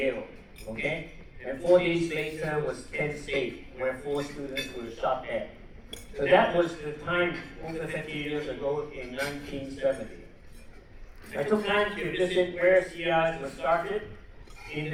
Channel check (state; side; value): identical; both; correlation 1.00